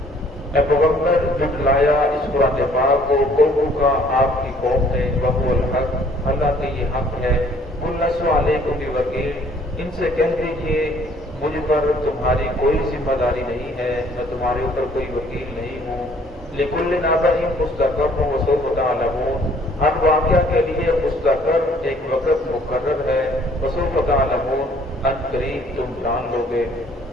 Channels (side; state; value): both; normal; correlation 0.59